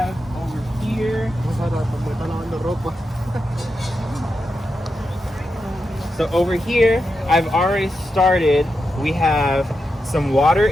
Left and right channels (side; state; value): both; normal; correlation 0.87